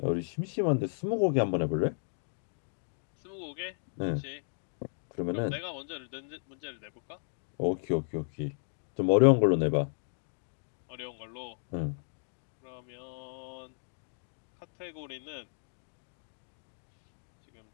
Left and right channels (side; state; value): right; silent; digital silence